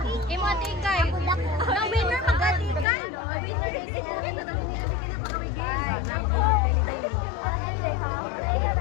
Imo ati ikay. No winner magatikan. No winner is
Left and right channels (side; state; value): right; drops out; at 2.9 s